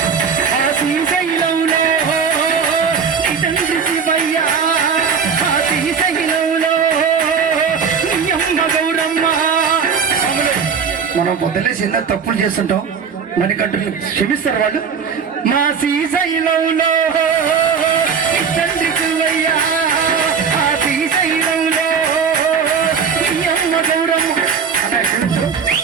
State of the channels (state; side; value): quieter; left; 6.3 dB